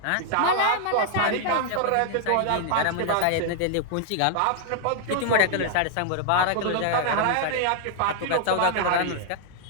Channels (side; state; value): both; different; correlation 0.00